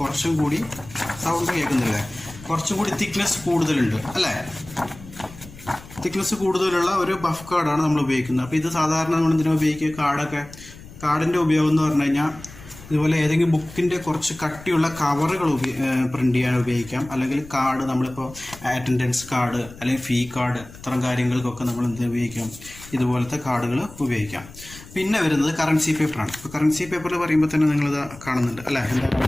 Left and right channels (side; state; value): left; noise; rumble, 18 dB below the sound